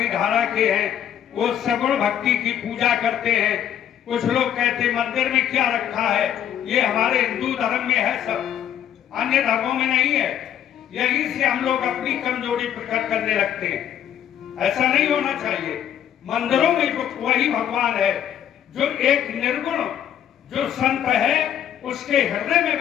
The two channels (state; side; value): quieter; right; 10.0 dB